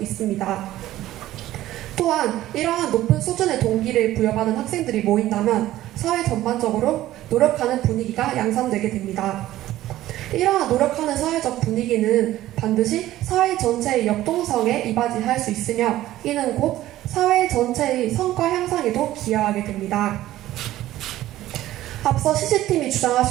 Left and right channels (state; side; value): quieter; left; 14.7 dB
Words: 또한 이러한 높은 수준의 동기를 부여받은 학생들이 모인다면 사회 전반적으로 노력하는 분위기가 양산되게 됩니다. 이러한 노력하는 사회적 분위기는 반드시 사회 전체의 역동성에 이바지할 수 있으며 이는 곧 사회 전체의 성과 향상에도 기여하게 됩니다. 앞서 CC팀이